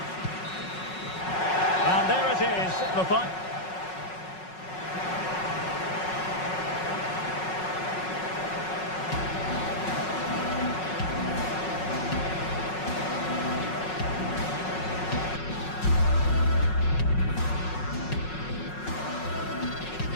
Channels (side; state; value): right; late; 5.4 ms